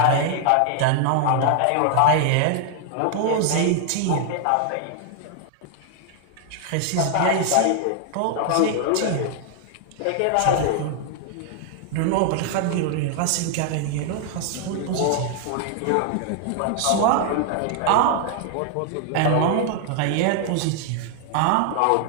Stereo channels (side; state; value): both; different; correlation 0.00